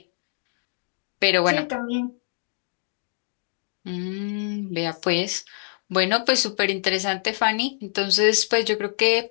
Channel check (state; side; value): silent; right; digital silence